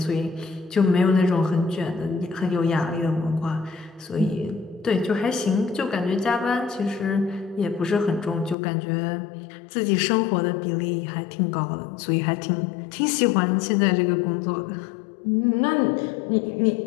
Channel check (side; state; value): right; drops out; at 8.6 s